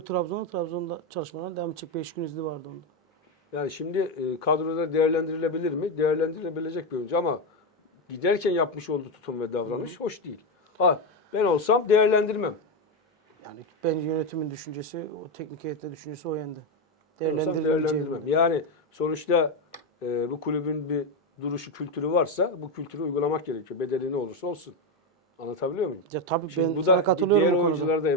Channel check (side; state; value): both; normal; correlation 0.09